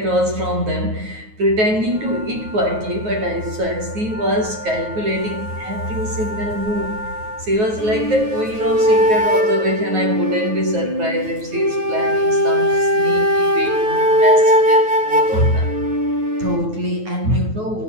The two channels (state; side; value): late; left; 9.4 ms